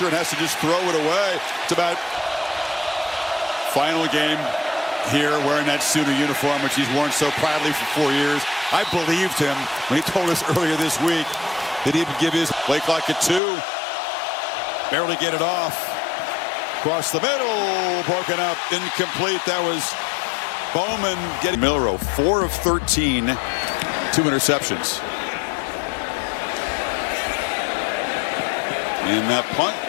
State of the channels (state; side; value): drops out; right; at 13.4 s